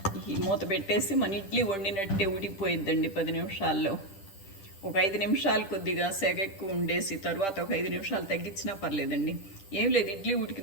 ఈ మూత పెట్టేసి మన ఇడ్లీ వండినట్టే ఉడికిపోయిద్దండి 10 నిమిషాల్లో. ఒక 5 నిమిషాలు కొద్దిగా సెగ ఎక్కువ ఉండేసి తర్వాత ఒక 5 నిమిషాలు తగ్గించినా పర్లేదండి. ఏం లేదు, ఇడ్లీ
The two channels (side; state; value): right; late; 10 ms